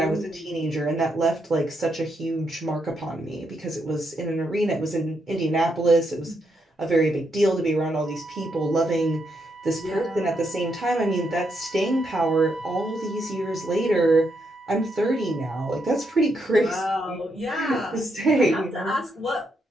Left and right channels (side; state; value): both; normal; correlation 0.79